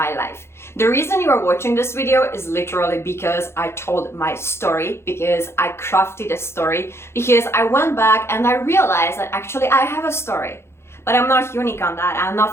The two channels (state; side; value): late; right; 0.12 ms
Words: life. The reason you are watching this video is literally because I told my story, because I crafted a story, because I went back and I realized that actually I have a story. But I'm not unique on that, and